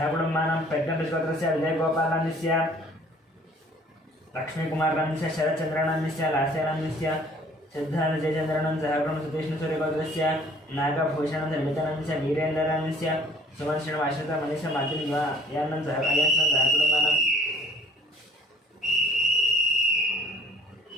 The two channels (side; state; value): both; normal; correlation 0.54